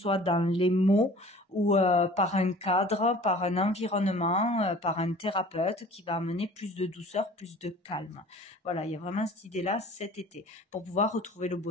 dans les mots ou par un cadre, par un environnement, par un thérapeute qui va amener plus de douceur, plus de calme. Voilà, il y a vraiment cette idée-là cet été, pour pouvoir retrouver le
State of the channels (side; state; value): both; normal; correlation 0.46